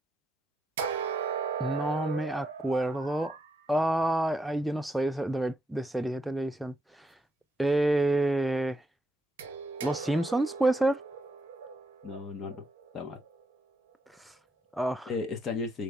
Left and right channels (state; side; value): normal; both; correlation 0.80